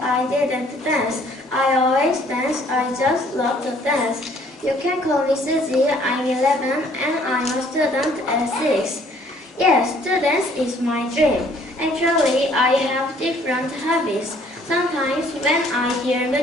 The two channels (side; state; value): both; normal; correlation 0.60